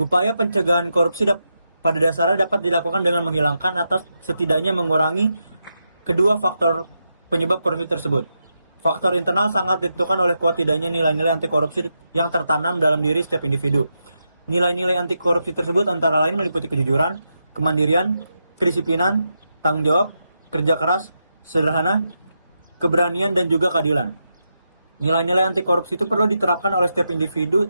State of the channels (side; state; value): both; inverted; correlation -0.85